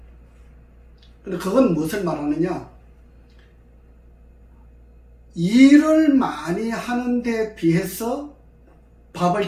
근데 그건 무엇을 말하느냐, 일을 많이 하는데 비해서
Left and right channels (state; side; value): identical; both; correlation 1.00